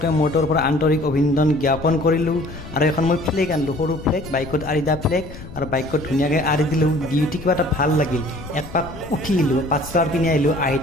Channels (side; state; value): left; noise; rumble, 14 dB below the sound